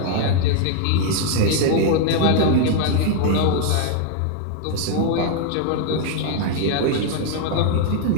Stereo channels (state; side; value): different; both; correlation 0.00